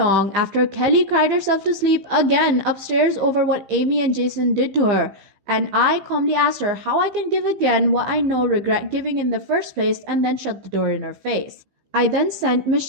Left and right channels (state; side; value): late; left; 15 ms